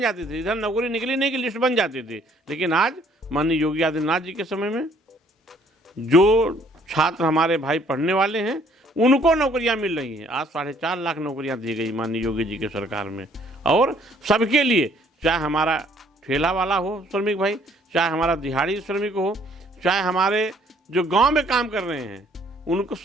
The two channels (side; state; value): both; normal; correlation 0.62